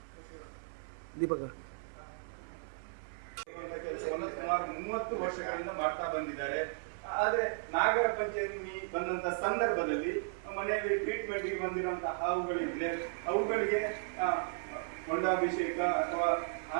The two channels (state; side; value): silent; left; 54 dB below the other